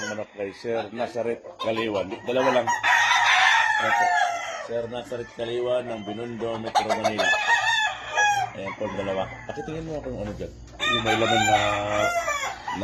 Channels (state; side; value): identical; both; correlation 1.00